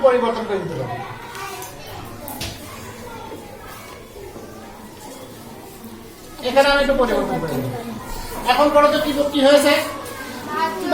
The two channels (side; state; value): both; identical; correlation 1.00